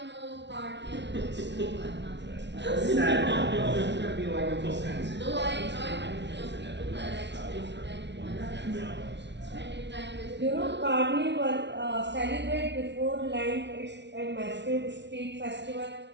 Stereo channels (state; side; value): late; left; 0.51 ms